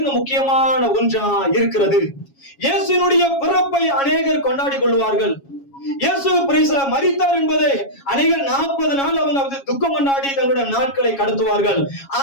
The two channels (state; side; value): late; right; 7.3 ms